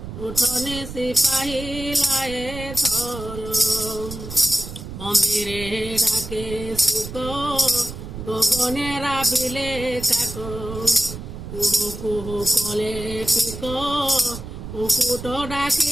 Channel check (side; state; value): right; noise; rumble, 10 dB below the sound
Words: উঠনি সিপাহী লায়ে থর মন্দিরে ডাকে সুখ গগনে রাবিলে কাক কুহু কুহু কলে পিক কুকুট